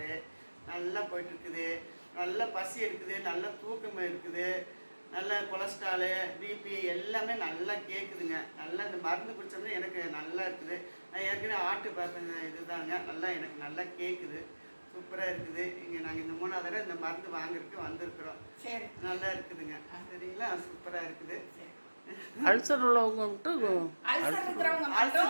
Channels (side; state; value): both; inverted; correlation -1.00